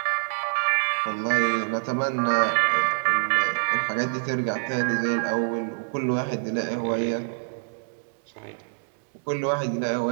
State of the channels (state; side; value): silent; left; digital silence